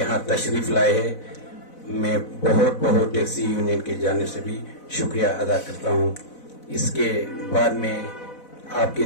तशरीफ लाए है। मैं बहुत टैक्सी यूनियन की जानिब से भी शुक्रिया अदा करता हूँ। इसके बाद में आपके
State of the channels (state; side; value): late; right; 4.0 ms